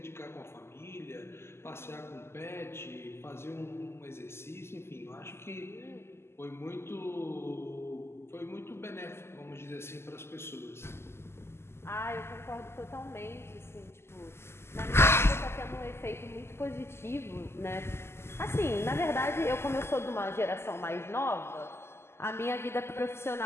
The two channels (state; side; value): late; right; 0.12 ms